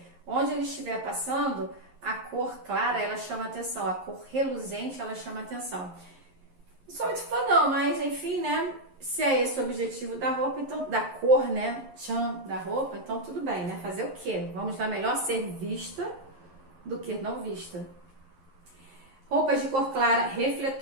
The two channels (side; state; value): left; late; 11 ms